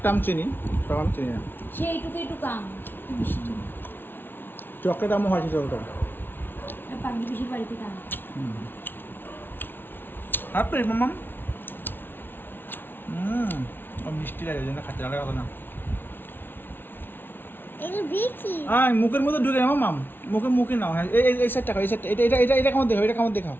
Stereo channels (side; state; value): right; late; 0.10 ms